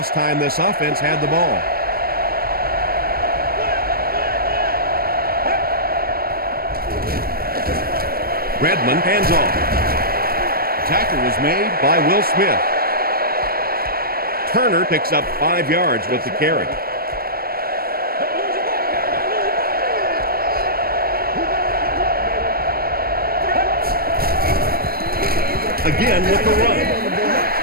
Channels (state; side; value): late; left; 0.44 ms